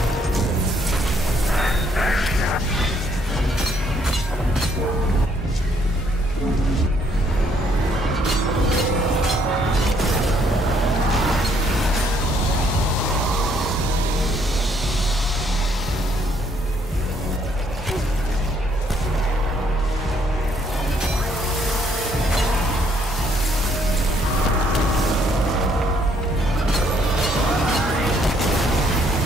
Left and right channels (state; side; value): normal; both; correlation 0.68